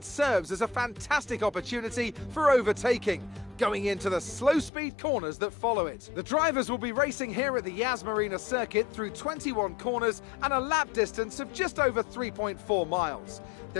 serves as a fantastic opportunity for overtaking, going into the slow speed corners that follow it. The drivers will be racing here at the Yas Marina circuit through 21 corners and a lap distance of just over 3.4 miles.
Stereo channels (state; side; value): drops out; right; at 4.7 s